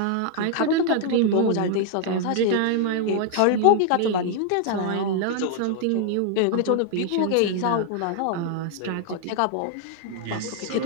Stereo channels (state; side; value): different; both; correlation 0.00